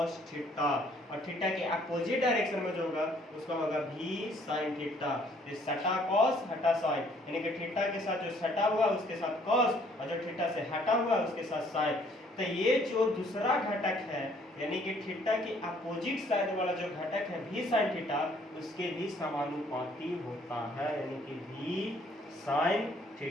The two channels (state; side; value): normal; both; correlation 0.62